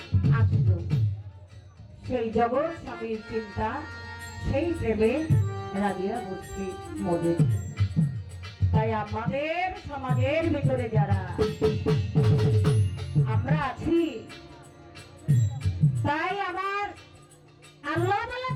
আসলো। সেই জগৎ স্বামীর চিন্তা, সেই প্রেমে রাজিয়া বস্তি মদের। তাই আমাদের সমাজের ভিতরে যারা আমরা আছি, তাই আমার আল্লাহ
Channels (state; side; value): identical; both; correlation 1.00